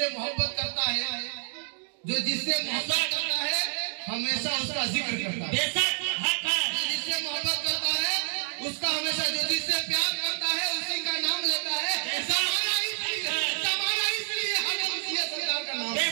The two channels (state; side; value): silent; left; 59 dB below the other